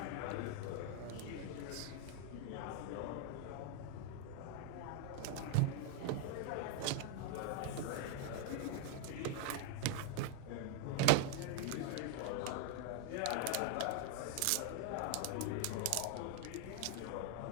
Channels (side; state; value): both; different; correlation 0.00